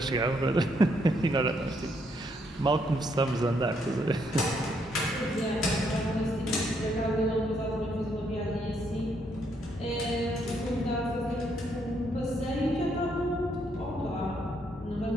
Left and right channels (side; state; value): both; normal; correlation 0.73